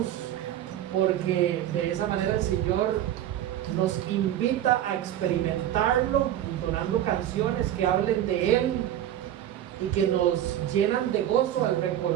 porque de esa manera el Señor nos invita a experimentarlo, entonando canciones que hablen de Él y que nos llenan de gozo al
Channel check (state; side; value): quieter; left; 11.8 dB